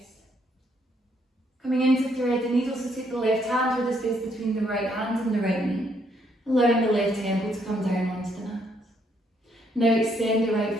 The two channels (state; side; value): normal; both; correlation 0.71